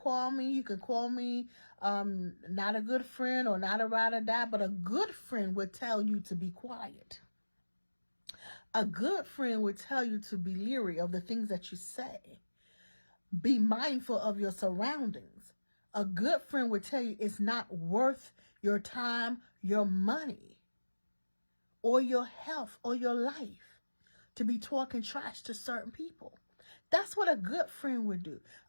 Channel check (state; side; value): inverted; both; correlation -1.00